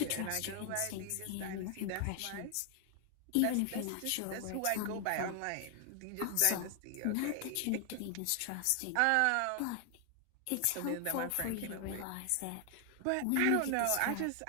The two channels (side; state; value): both; different; correlation 0.00